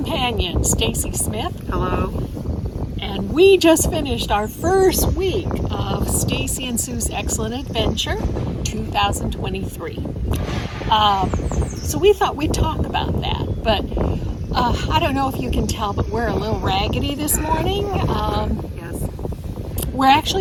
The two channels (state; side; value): identical; both; correlation 1.00